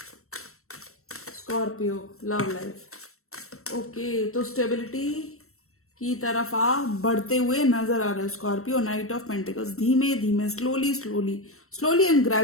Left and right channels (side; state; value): right; late; 0.63 ms